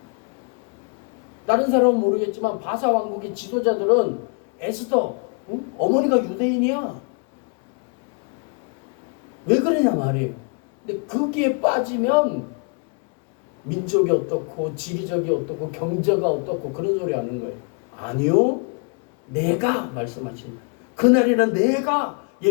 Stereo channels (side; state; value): right; quieter; 38.1 dB